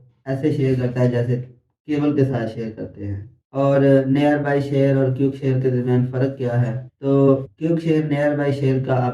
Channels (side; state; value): both; identical; correlation 1.00